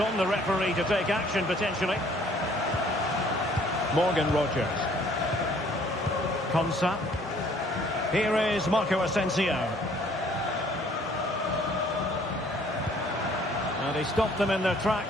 the referee to take action potentially. Morgan Rodgers. Konsa. Here is Marco Asensio. And he stopped them in their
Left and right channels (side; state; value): both; normal; correlation 0.59